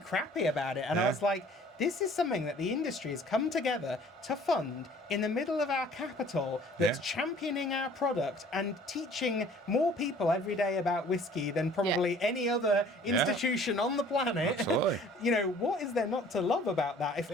about it. And I was like, this is something that the industry has come together to fund in the middle of our capital, that's championing our product and teaching more people every day about whiskey than probably any other institution on the planet. Absolutely. You know, what is there not to love about that?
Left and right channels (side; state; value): both; normal; correlation 0.52